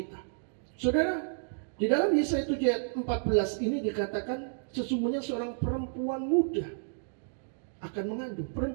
Saudara, di dalam Yesaya 7 ayat 14 ini dikatakan sesungguhnya seorang perempuan muda akan mengandung.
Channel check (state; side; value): silent; left; digital silence